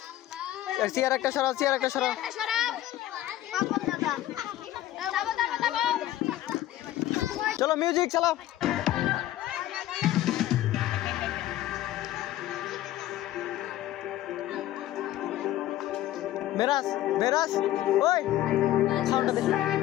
চেয়ার একটা সরাও, চেয়ার একটা সরাও। চলো মিউজিক চালাও। মেরাজ, মেরাজ, ওই সাউন্ডটা দে।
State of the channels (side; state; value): right; quieter; 14.0 dB